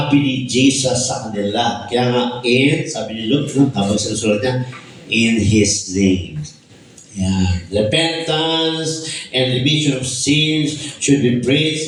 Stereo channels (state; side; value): identical; both; correlation 1.00